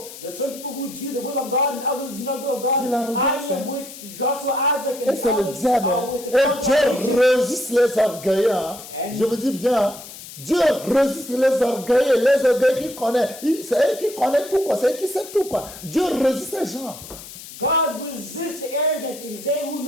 There's some people who do the will of God and others do not the will of God. C'est l'arrogance, I am with Joshua, Isaac, Et and c'est le others diable. are Hein. with the Et Dieu Father. résiste les orgueilleux. Hein. Je vous dis bien, hein. Dieu résiste les orgueilleux qui connaissent. C'est eux qui connaissent tout, quoi. C'est eux qui savent tout, quoi. Dieu résiste ces gens. God resists the arrogant. It is they who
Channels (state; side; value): noise; left; hiss, 15 dB below the sound